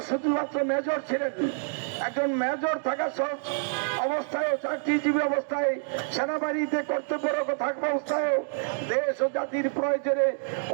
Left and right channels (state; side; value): silent; left; digital silence